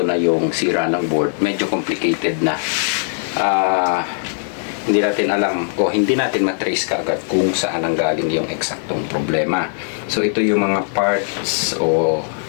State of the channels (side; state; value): right; silent; 66 dB below the other